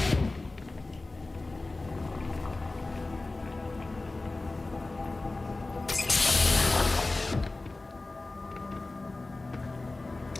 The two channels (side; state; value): right; quieter; 3.2 dB